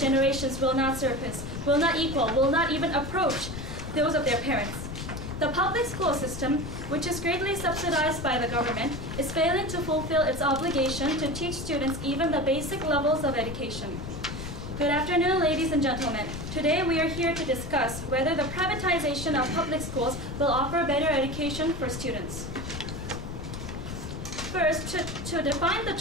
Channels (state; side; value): noise; left; rumble, 8 dB below the sound